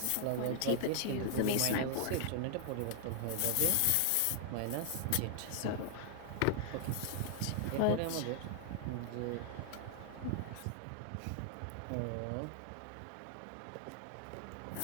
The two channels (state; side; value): different; both; correlation 0.00